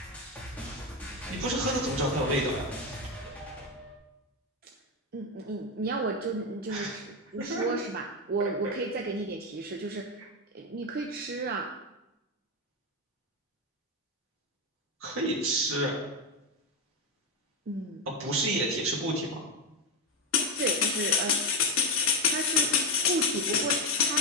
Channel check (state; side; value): normal; both; correlation 0.09